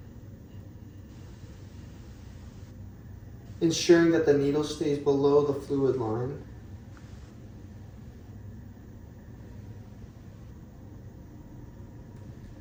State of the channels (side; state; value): both; identical; correlation 1.00